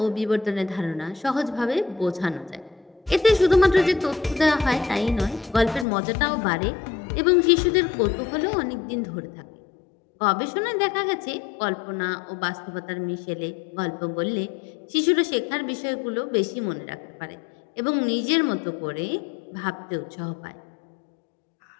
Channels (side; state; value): right; drops out; at 5.9 s